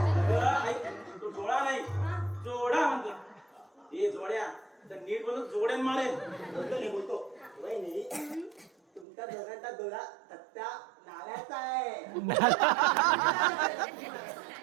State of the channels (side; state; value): left; drops out; at 9.1 s